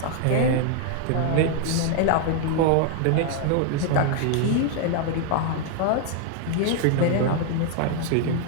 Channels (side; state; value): both; different; correlation 0.00